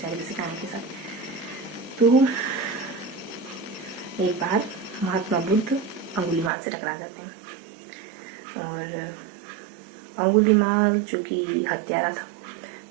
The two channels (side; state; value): left; drops out; at 6.5 s